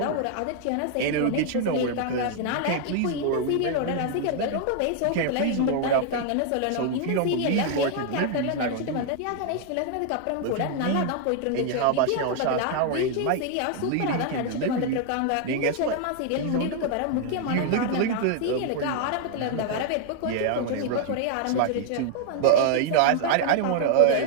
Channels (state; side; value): different; both; correlation 0.00